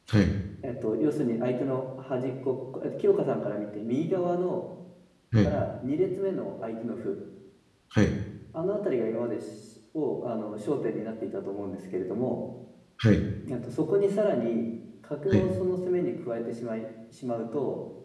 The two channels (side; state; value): both; identical; correlation 1.00